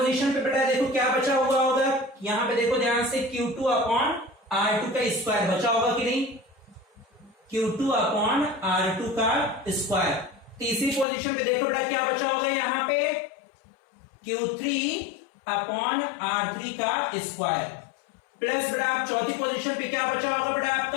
पे बेटा देखो क्या बचा हुआ होगा, यहां पे देखो ध्यान से, Q2 अपॉन R2 का स्क्वायर बचा होगा कि नहीं, Q2 अपॉन R2 का स्क्वायर। तीसरी पोजीशन पे देखो बेटा क्या बचा होगा, यहां पे Q3 अपॉन R3 का स्क्वायर, प्लस बेटा आप चौथी पोजीशन पे क्या बचा होगा बेटा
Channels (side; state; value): right; drops out; at 11.1 s